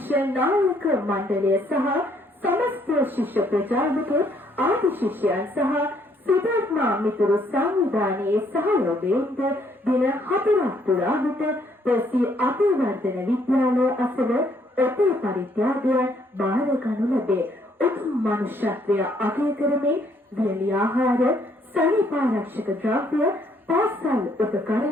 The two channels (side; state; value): both; normal; correlation 0.68